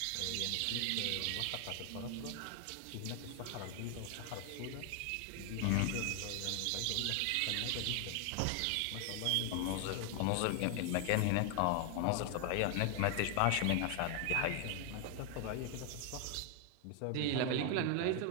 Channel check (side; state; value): both; different; correlation 0.00